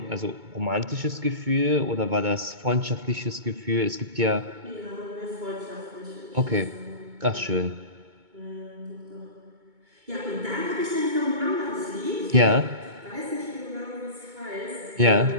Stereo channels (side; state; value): left; late; 2.2 ms